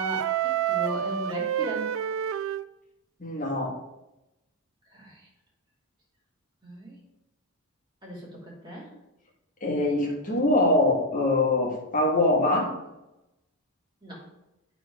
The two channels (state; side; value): normal; both; correlation -0.01